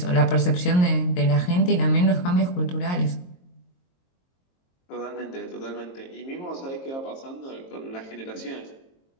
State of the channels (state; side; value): late; right; 22 ms